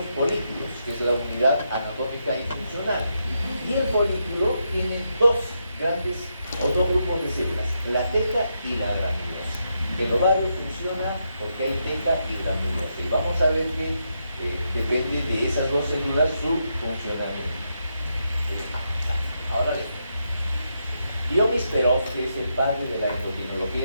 folículos, que es la unidad anatómica y funcional. Y el folículo tiene dos grupos de células, la teca y la granulosa. El ovario funciona porque hay teca y granulosa. Y vamos a ver que depende de esas dos células su funcionamiento. Ahora bien, Dionis Perov, que es el padre de la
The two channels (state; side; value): inverted; both; correlation -0.82